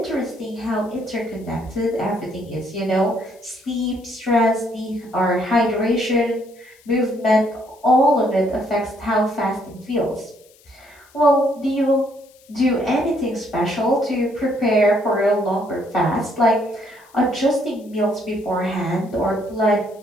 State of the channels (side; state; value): left; noise; hiss, 29 dB below the sound